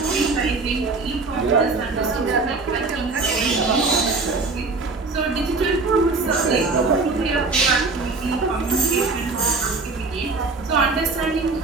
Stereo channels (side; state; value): left; quieter; 3.8 dB